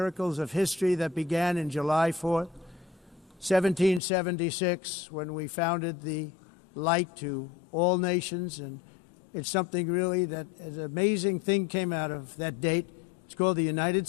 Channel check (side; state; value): right; drops out; at 4.0 s